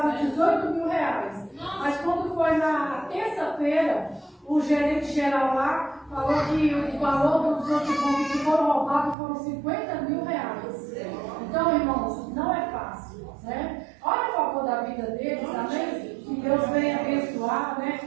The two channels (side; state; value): left; drops out; at 9.2 s